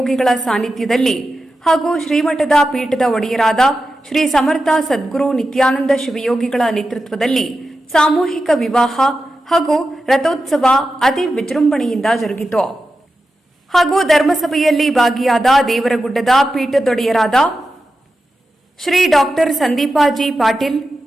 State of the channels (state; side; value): normal; both; correlation 0.91